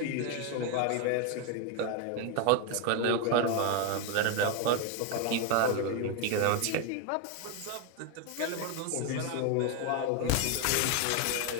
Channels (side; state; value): both; different; correlation 0.01